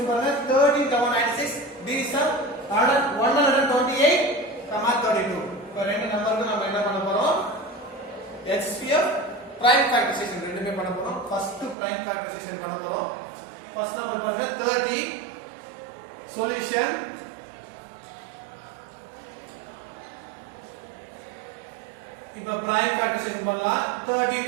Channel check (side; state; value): left; drops out; at 11.8 s